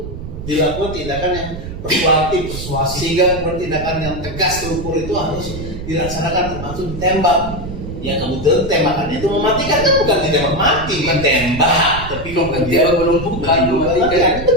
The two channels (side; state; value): right; noise; rumble, 9 dB below the sound